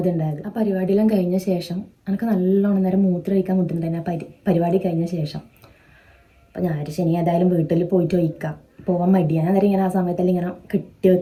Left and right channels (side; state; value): both; identical; correlation 1.00